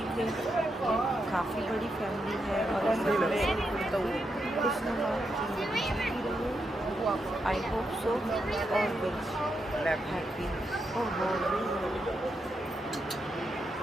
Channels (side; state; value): both; normal; correlation 0.83